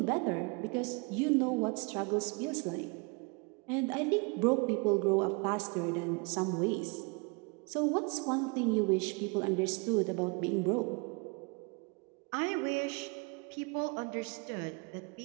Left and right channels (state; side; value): quieter; left; 32.1 dB